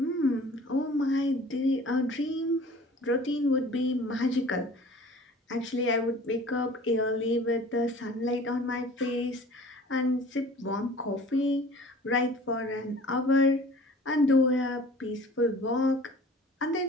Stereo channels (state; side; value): normal; both; correlation 0.46